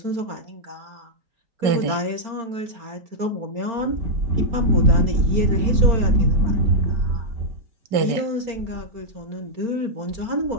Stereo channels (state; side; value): late; left; 4.4 ms